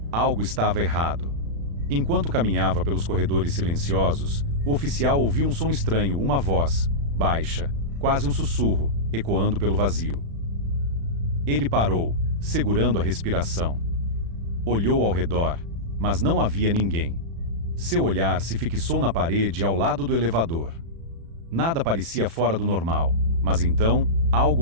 Algo estava errado. Enquanto caminhava pelos corredores silenciosos, o oficial ouviu um som estranho, uma voz, baixa, quase um sussurro, ecoando pelo vazio. Ele parou, segurando a respiração. Olhou ao redor, mas não havia ninguém. Seu olhar se fixou na parede ao lado do elevador. Nada parecia fora do normal, mas então, algo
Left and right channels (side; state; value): left; late; 36 ms